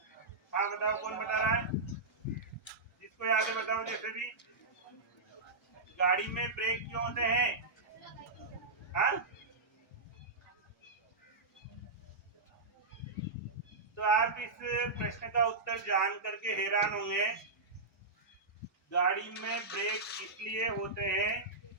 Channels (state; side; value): quieter; left; 3.5 dB